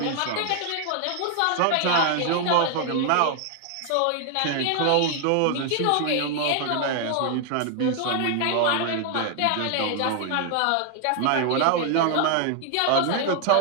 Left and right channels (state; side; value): different; both; correlation 0.00